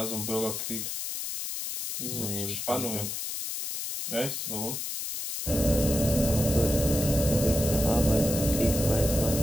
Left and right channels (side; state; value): left; noise; hiss, 4 dB below the sound